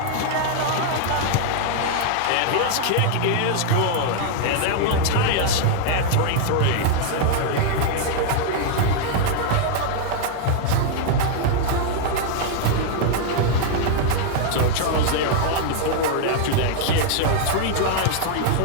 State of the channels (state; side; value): different; both; correlation 0.00